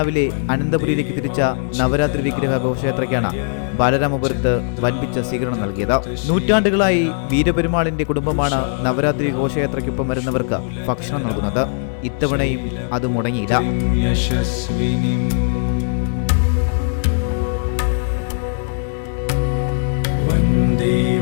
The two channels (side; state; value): right; silent; digital silence